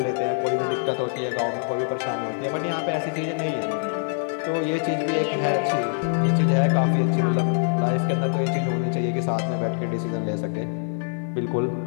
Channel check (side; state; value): right; silent; digital silence